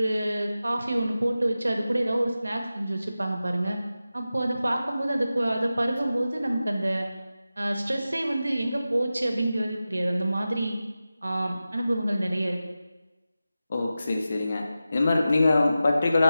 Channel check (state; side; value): inverted; both; correlation -0.94